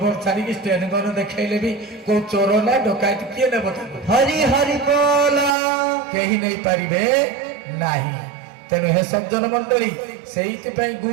ଛାଡିକି ଷ୍ଟେନ୍ ଗନ୍ ଦେଖେଇଲେ ବି କୋଉ ଚୋର ନା ଡକାୟତ କିଏ ନେବ ତାକୁ? ହରି ହରି ବୋଲ କେହି ନେଇପାରିବେ ନାହିଁ। ତେଣୁ ହେ ସଜ୍ଜନ ମଣ୍ଡଳୀ, ସେଇଥିପାଇଁ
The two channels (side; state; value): left; drops out; at 5.6 s